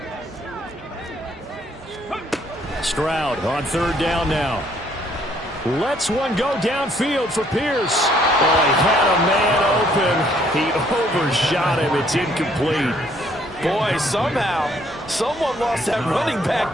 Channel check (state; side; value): normal; both; correlation 0.65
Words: Stroud on 3rd down now. Lets one go downfield for Pierce. Oh, he had a man open. He overshot him. It's incomplete. Boy, somehow, someone lost that running